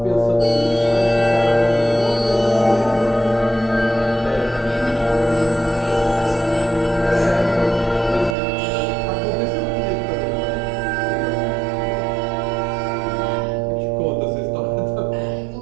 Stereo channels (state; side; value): drops out; left; at 8.3 s